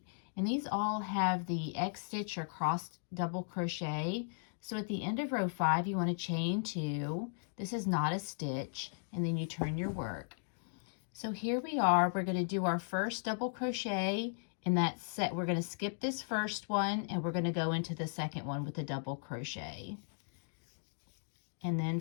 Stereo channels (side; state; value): right; silent; digital silence